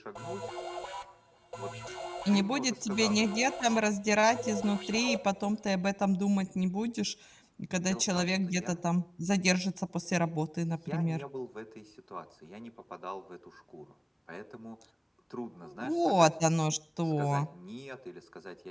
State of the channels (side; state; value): both; identical; correlation 1.00